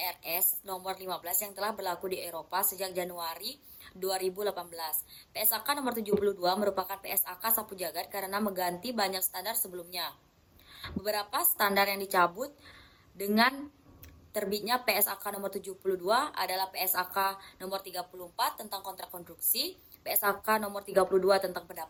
nomor 15 yang telah berlaku di Eropa sejak Januari 2018. PSAK nomor 72 merupakan PSAK sapu jagat karena mengganti banyak standar sebelumnya. Beberapa standar yang dicabut dengan terbitnya PSAK nomor 72 adalah PSAK nomor 34 tentang kontrak konstruksi, PSAK nomor 32 tentang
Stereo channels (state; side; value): identical; both; correlation 1.00